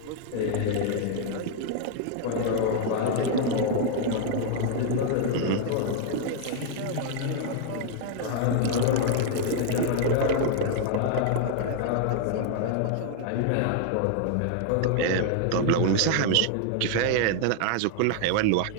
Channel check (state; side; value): different; both; correlation 0.00